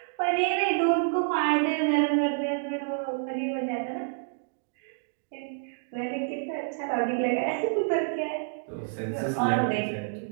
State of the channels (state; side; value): silent; left; digital silence